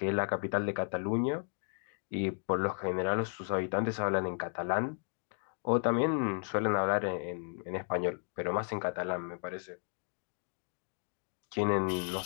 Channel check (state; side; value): silent; right; 55 dB below the other